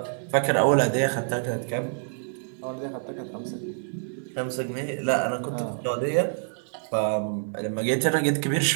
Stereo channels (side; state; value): left; silent; digital silence